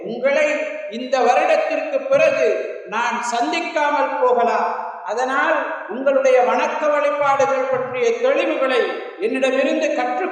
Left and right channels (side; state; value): both; identical; correlation 1.00